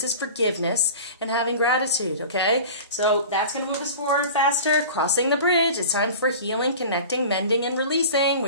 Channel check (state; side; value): inverted; both; correlation -0.37